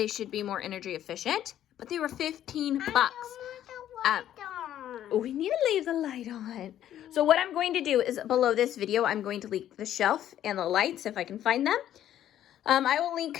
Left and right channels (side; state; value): right; quieter; 11.5 dB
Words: should be more energy efficient. But they were 15 bucks. We need to leave the light on. So what I'm going to do is below this video, I'm going to link the shelf and the lights if I can find them. I will link